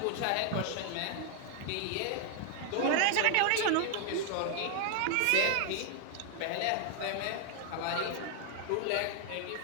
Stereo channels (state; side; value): different; both; correlation 0.00